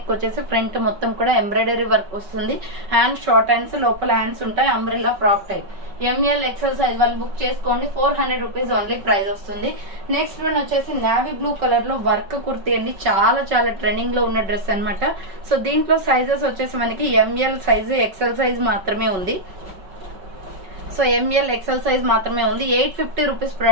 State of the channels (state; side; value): late; left; 5.3 ms